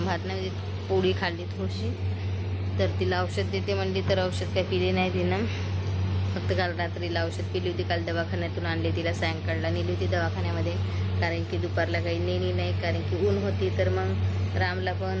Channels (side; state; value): both; identical; correlation 1.00